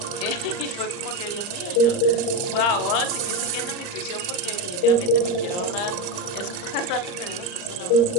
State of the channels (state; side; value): late; right; 38 ms